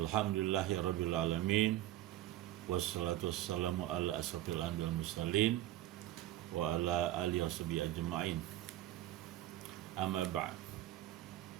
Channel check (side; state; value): left; quieter; 14.2 dB